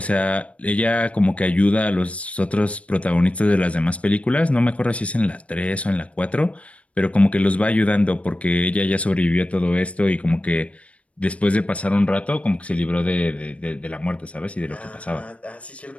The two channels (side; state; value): right; late; 0.063 ms